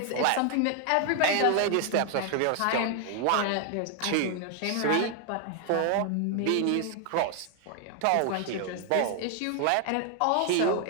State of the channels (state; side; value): different; both; correlation 0.00